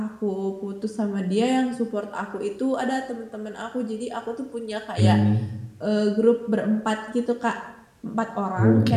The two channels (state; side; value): identical; both; correlation 1.00